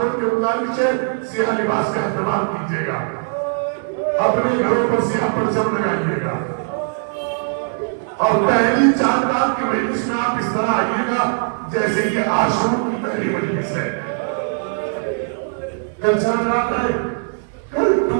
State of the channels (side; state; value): left; silent; 63 dB below the other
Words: کے گزارش ہے سیاہ لباس کا اہتمام کیجیے گا، اپنے گھروں پر سیاہ پرچم لگائیے گا اور پہلی 4 رات کی مجلس میں آپ اس طرح آئیے گا جیسے کہ عاشور کی پہلی مجلس ہے۔ کل 4 رات ہے، کل